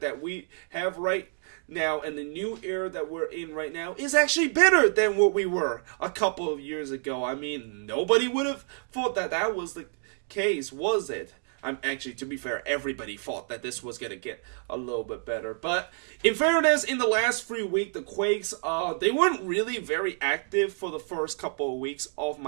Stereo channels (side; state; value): left; silent; 56 dB below the other